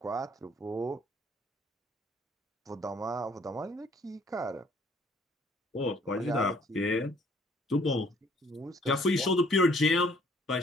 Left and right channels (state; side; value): normal; both; correlation 0.61